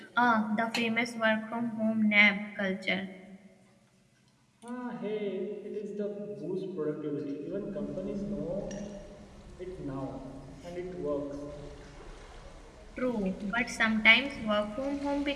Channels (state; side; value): identical; both; correlation 1.00